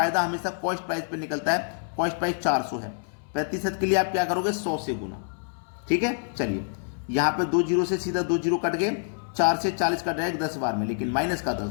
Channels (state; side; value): silent; right; 60 dB below the other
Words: हमेशा कॉस्ट प्राइस पे निकलता है। कॉस्ट प्राइस 400 है, प्रतिशत के लिए आप क्या करोगे, 100 से गुना। ठीक है, चलिए यहाँ पे 2 जीरो से सीधा 2 जीरो कट गए, 4 से 40 कट जाएगा 10 बार में, लेकिन माइनस का 10,